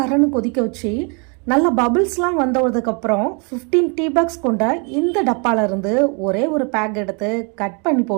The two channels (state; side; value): quieter; left; 34.7 dB